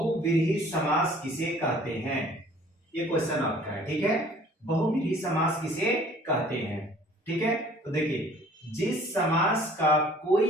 समास किसे कहते हैं, ये क्वेश्चन आपका है। ठीक है, बहुव्रीहि समास किसे कहते हैं। ठीक है, तो देखिए, जिस समास का कोई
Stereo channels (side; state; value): both; normal; correlation 0.52